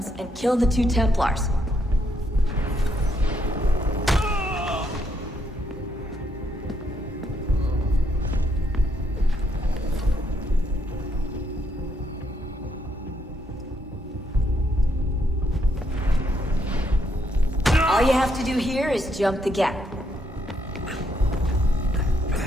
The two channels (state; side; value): normal; both; correlation 0.74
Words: and kill the 2 Templars. All you have to do here is jump the gap.